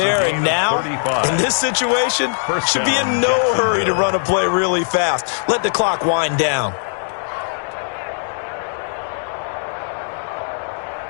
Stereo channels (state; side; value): silent; right; digital silence